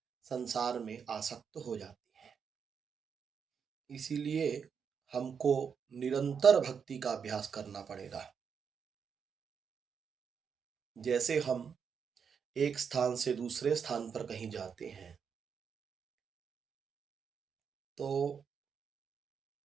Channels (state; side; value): quieter; left; 6.7 dB